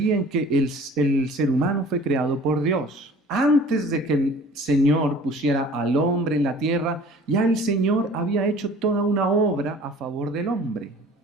en que el ser humano fue creado por Dios. Antes de que el Señor pusiera al hombre en la tierra, ya el Señor había hecho toda una obra a favor del hombre.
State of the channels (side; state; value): both; normal; correlation 0.47